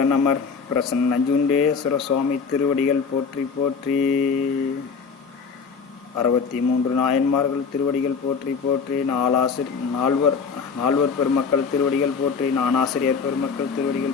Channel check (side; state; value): right; quieter; 5.6 dB